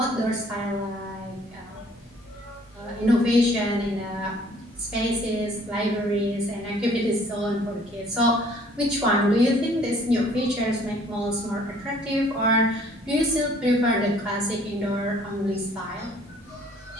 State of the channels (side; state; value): both; normal; correlation 0.58